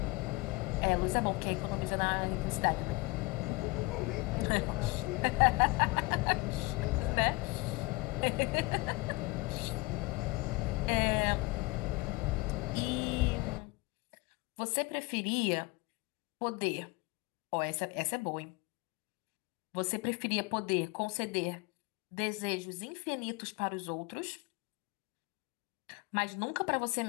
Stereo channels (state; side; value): quieter; right; 24.0 dB